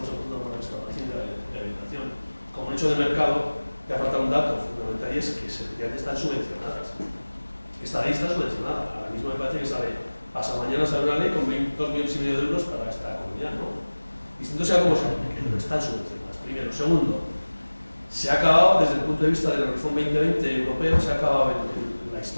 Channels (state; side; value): inverted; both; correlation -1.00